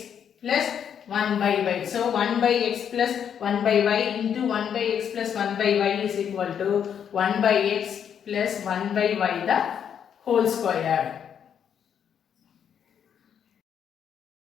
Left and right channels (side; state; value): right; quieter; 8.3 dB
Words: plus 1 by y. So 1 by x plus 1 by y into 1 by x plus 1 by y is equal to 1 by x plus 1 by y the whole square.